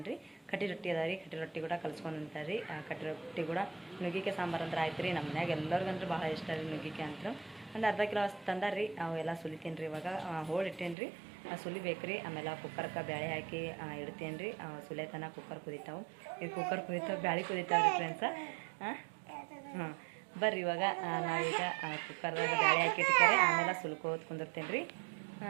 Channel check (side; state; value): left; drops out; at 11.0 s